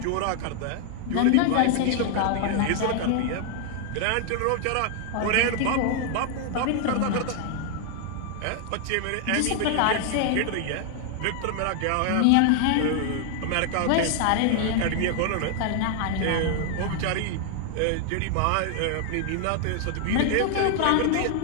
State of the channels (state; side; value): different; both; correlation 0.00